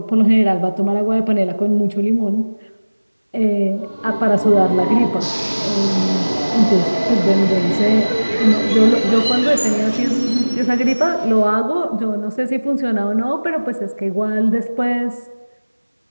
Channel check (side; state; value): both; inverted; correlation -1.00